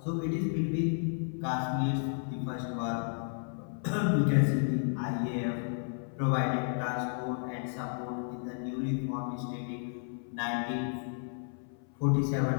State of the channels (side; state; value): right; silent; 56 dB below the other